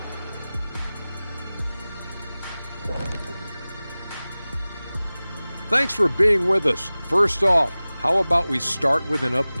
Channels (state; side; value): inverted; both; correlation -0.98